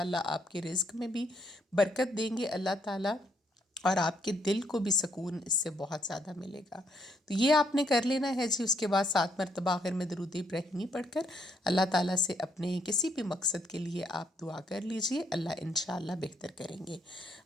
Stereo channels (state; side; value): normal; both; correlation 0.72